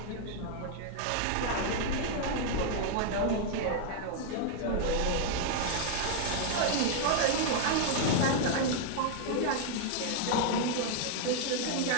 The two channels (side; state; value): both; different; correlation 0.00